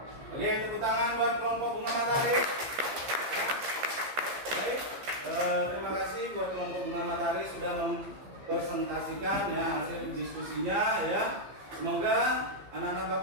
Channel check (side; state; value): left; late; 15 ms